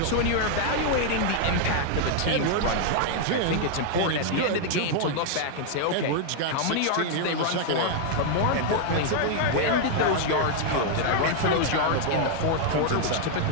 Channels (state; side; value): different; both; correlation 0.00